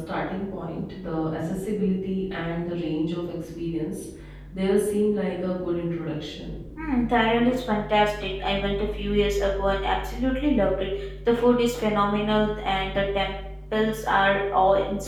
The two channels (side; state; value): both; identical; correlation 1.00